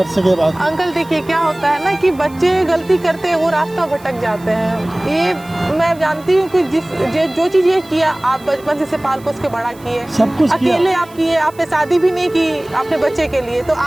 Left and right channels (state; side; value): noise; right; hiss, 25 dB below the sound